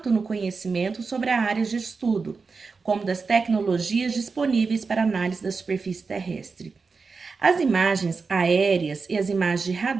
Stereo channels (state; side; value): quieter; left; 4.6 dB